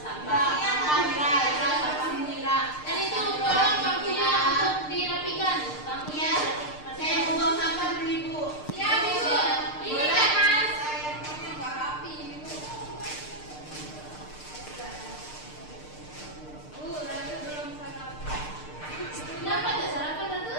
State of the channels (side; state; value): right; late; 6.6 ms